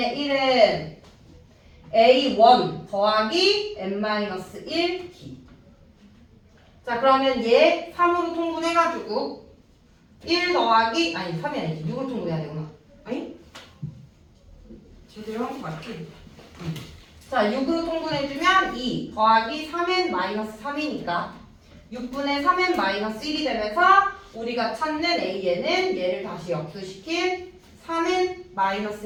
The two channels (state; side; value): identical; both; correlation 1.00